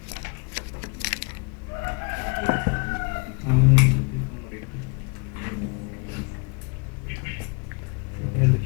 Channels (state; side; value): quieter; right; 32.6 dB